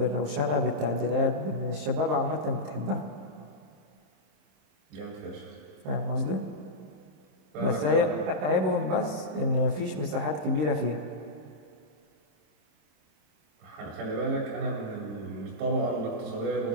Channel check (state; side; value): late; left; 27 ms